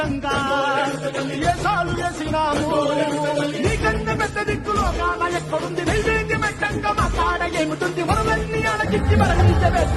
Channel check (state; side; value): identical; both; correlation 1.00